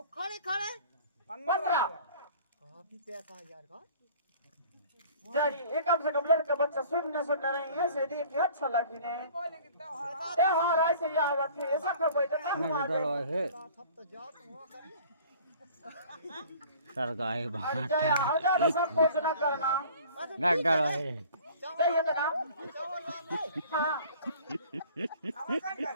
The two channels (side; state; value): both; inverted; correlation -0.48